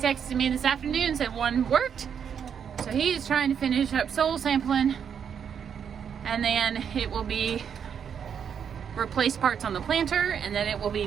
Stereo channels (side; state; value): left; quieter; 7.7 dB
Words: me this afternoon and said one worked. So he's trying to finish up soil sampling, and then it will be replace parts on the planter, and then it will